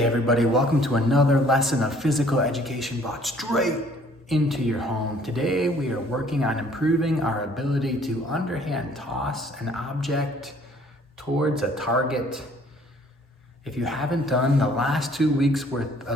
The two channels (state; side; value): normal; both; correlation 0.58